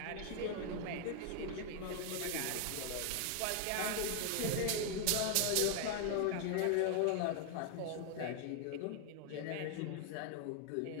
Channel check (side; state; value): both; different; correlation 0.00